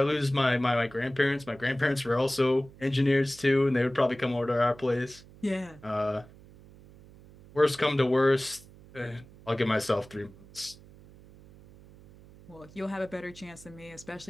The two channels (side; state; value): right; noise; hum, 22 dB below the sound